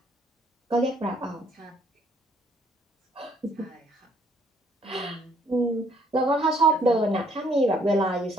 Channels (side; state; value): both; normal; correlation 0.64